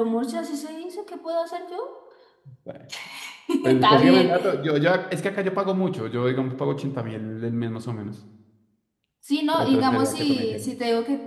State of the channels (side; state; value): both; identical; correlation 1.00